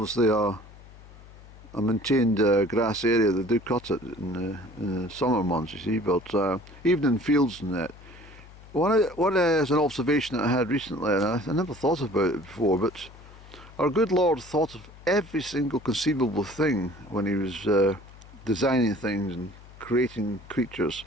a maintained grass area. They do cut it in the summer months, you see, but even in fields and that. What is an observation that I had recently, and I never thought about it before, but our good Lord thought of every single conceivable thing when he was designing things and creating creatures.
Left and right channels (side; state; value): left; noise; hum, 20 dB below the sound